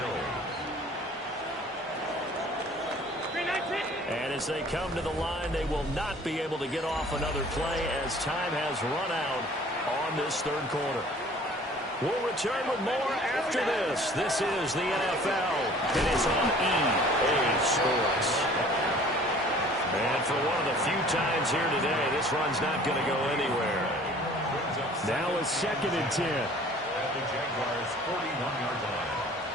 And as they come to the line, they will not be able to get off another play as time has run out on this third quarter. We'll return with more after this. This is the NFL, and it's on EA Sports. And for one of the few times here today, this run's not going to go anywhere. Now it's second and 10. At the Jaguars' 41-yard line.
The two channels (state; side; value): normal; both; correlation 0.50